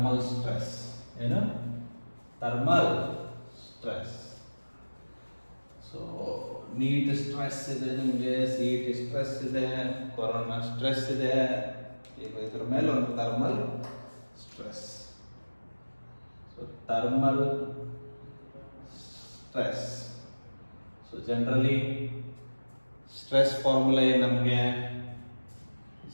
stress. Thermal stress. So, NEET stress ಇದೆ, ನಿಮಗೆ CET stress ಇದೆ, corona stress ಇದೆ. ಈಗ ಇದ್ರ ಮೇಲೆ ಒಂದು thermal stress. So thermal stress. So generally stress formula ಏನು ನಮಗೆ?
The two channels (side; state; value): both; inverted; correlation -1.00